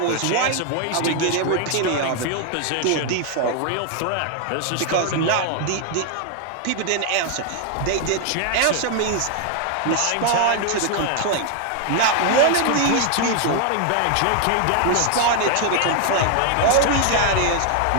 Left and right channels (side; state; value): both; different; correlation 0.00